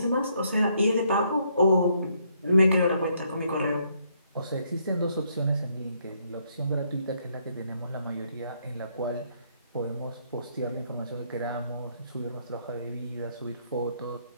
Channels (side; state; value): both; inverted; correlation -0.72